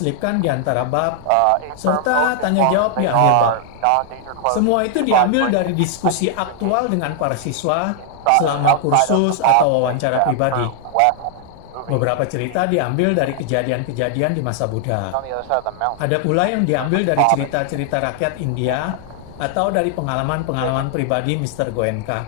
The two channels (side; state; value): both; different; correlation 0.00